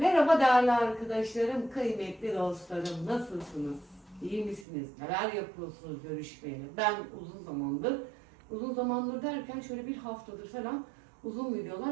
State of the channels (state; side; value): drops out; left; at 4.7 s